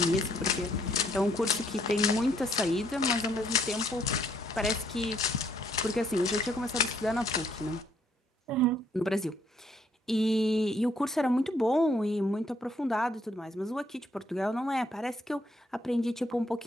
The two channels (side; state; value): both; normal; correlation 0.69